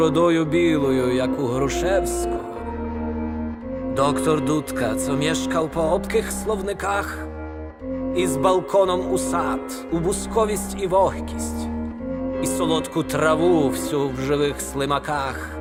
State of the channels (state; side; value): identical; both; correlation 1.00